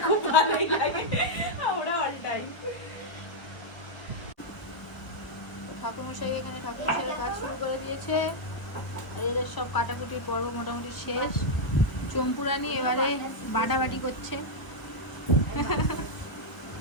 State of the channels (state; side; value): late; right; 1.2 ms